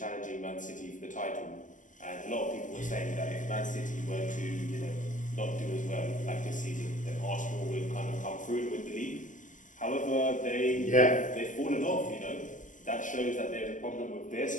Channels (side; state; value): right; late; 0.37 ms